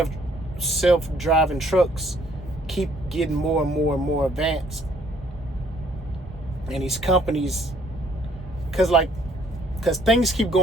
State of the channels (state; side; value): normal; both; correlation 0.63